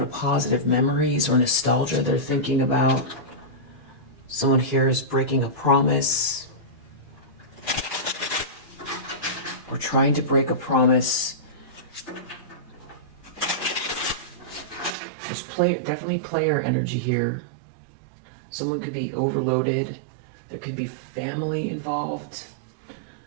of positive memories or nostalgia they're thinking about. Someone here is breaking a promise. Or trying to break a promise. There's definitely player energy here. Someone could be overloaded. There could be family involved.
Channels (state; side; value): drops out; left; at 15.0 s